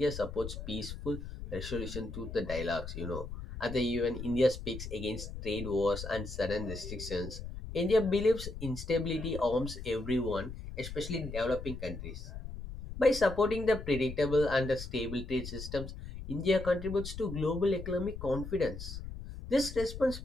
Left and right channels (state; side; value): noise; left; rumble, 9 dB below the sound